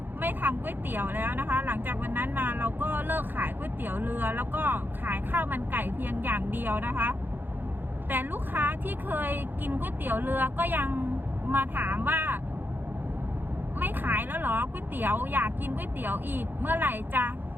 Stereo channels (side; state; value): left; late; 0.094 ms